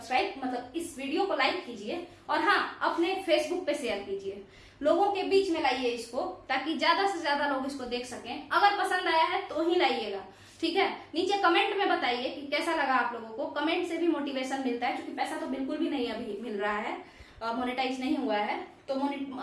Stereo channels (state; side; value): identical; both; correlation 1.00